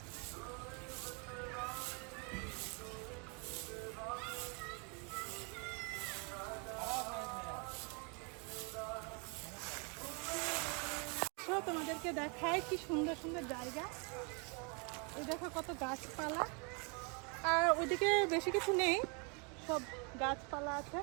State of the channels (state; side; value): quieter; left; 34.6 dB